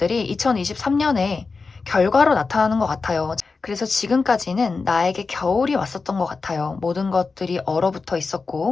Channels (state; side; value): quieter; right; 4.4 dB